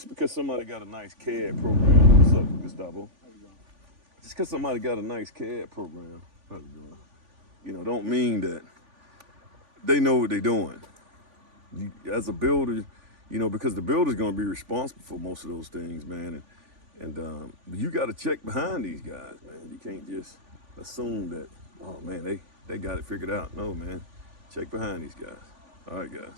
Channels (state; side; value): late; left; 3.5 ms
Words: because somebody got a nice CAD program, what's up, Gustavo? How you doing? Just because somebody got a nice CAD program, how you doing? You know, don't mean that they know what they're doing. You, as a builder, you know, because the builder's going to be responsible for most of those things, man. And you got to check behind these guys, man. You can't just assume that, oh, man, they got it figured out. No, man. Check behind these guys. All right,